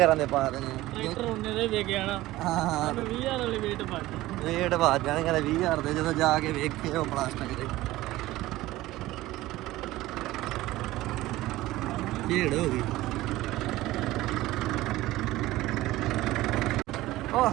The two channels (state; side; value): quieter; left; 17.2 dB